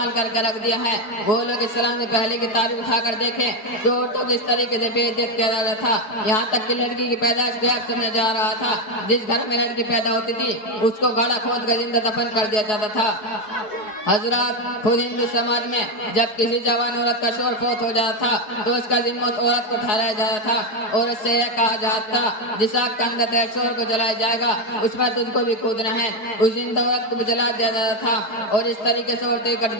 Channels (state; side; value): late; right; 4.7 ms